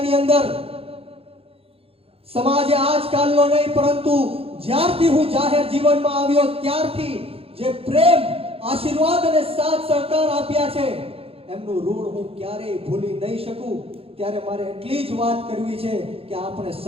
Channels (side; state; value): left; late; 0.28 ms